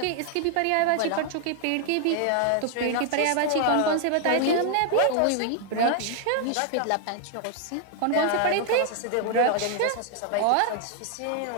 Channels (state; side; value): different; both; correlation 0.00